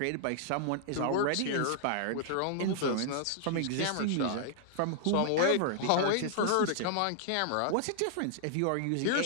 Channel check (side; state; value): both; different; correlation -0.01